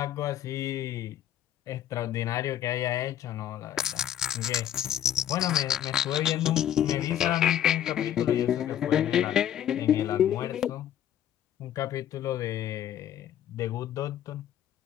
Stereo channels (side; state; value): right; quieter; 10.8 dB